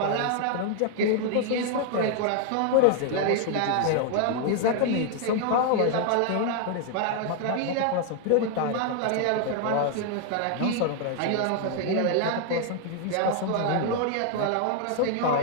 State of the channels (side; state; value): both; different; correlation 0.00